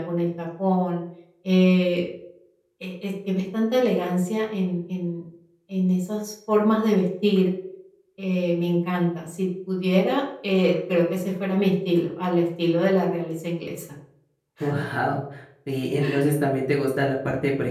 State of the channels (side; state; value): both; identical; correlation 1.00